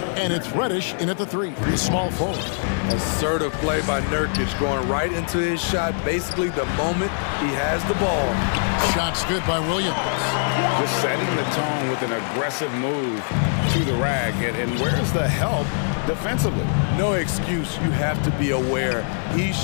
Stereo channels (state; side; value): silent; right; digital silence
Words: And it's Reddish in at the 3, the small forward. Assertive play by Nurkic, going right into his shot basically the moment he has the ball. Shot's good by Williams. Just setting the tone with an aggressive move to the rag. And where's the help defensively? No excuse. You have to be aware. He